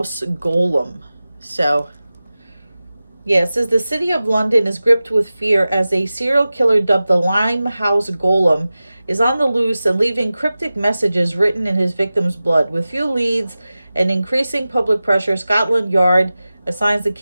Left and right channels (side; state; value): both; inverted; correlation -0.96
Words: Golem. So, yeah, it says the city of London is gripped with fear as a serial killer dubbed the Limehouse Golem is on the loose and leaving cryptic messages written in his victim's blood. With few leads and increasing public pressure, Scotland Yard assigns the